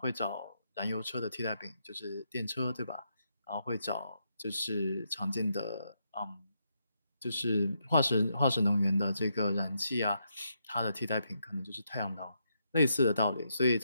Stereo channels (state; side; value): inverted; both; correlation -0.80